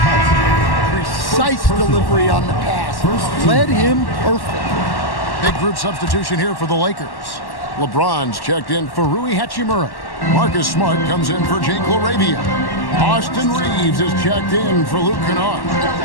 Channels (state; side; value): late; right; 1.1 ms